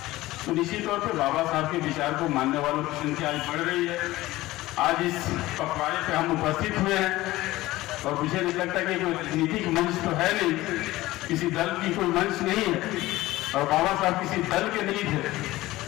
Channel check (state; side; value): quieter; right; 17.7 dB